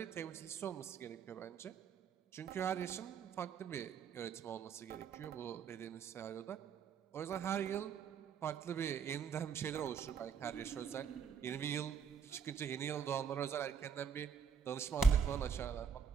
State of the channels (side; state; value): left; quieter; 6.6 dB